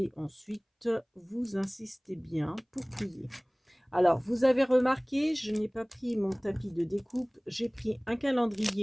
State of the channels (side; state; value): both; identical; correlation 1.00